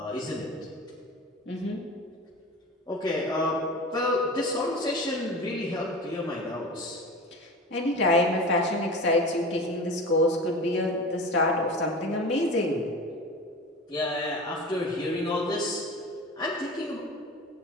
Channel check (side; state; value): both; normal; correlation 0.33